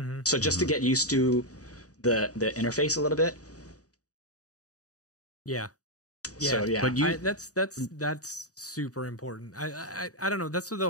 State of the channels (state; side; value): late; right; 0.66 ms